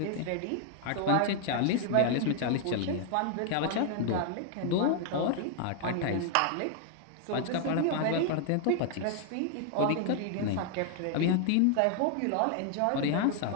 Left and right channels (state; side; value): different; both; correlation 0.00